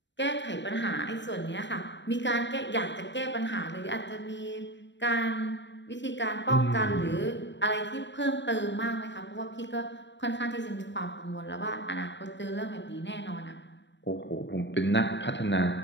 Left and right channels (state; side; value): late; right; 0.53 ms